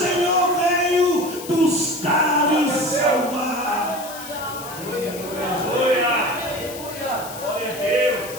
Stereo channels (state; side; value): noise; left; hiss, 13 dB below the sound